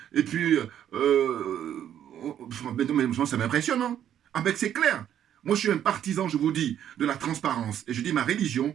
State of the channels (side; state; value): left; quieter; 10.2 dB